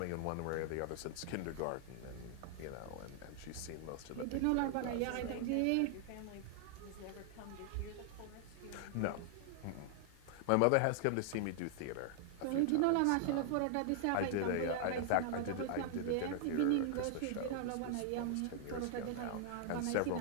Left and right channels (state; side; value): different; both; correlation 0.00